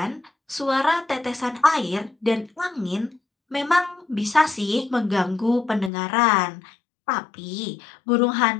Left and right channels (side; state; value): right; drops out; at 5.9 s